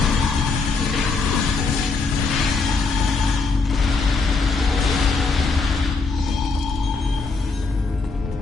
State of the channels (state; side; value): quieter; right; 4.1 dB